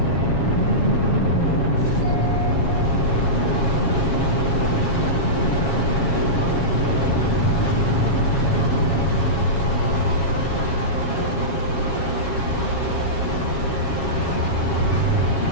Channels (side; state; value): right; late; 7.3 ms